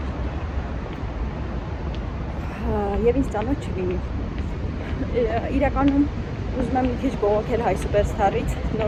Եվ ինձ ծանոթ չլինի։ Իրականում ուզում եմ մի քիչ բողոքել Հայ Սուպերստարից,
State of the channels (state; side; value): identical; both; correlation 1.00